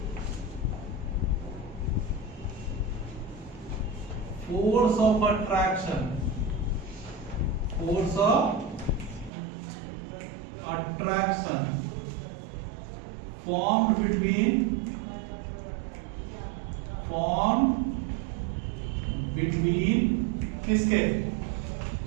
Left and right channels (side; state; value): left; drops out; at 9.3 s